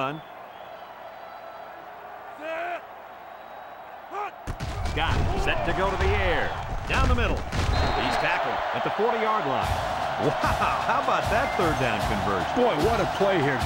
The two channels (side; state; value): both; identical; correlation 1.00